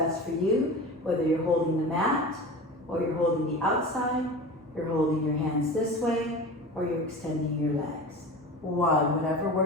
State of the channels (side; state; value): both; normal; correlation 0.32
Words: for you, whether you're holding the mat, or you're holding the outside, you're holding your hands this way, or you're extending your legs. 1, whatever